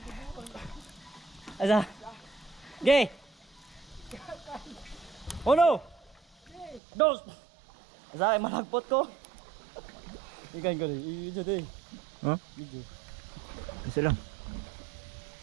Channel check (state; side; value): drops out; left; at 6.8 s